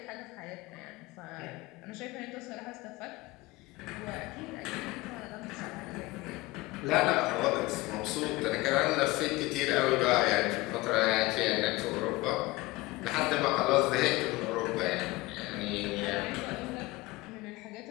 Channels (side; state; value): right; quieter; 20.9 dB